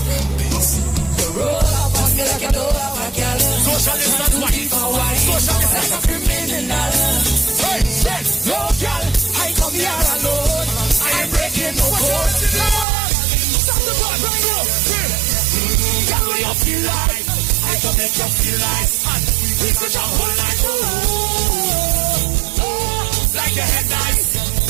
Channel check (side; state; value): left; drops out; at 12.9 s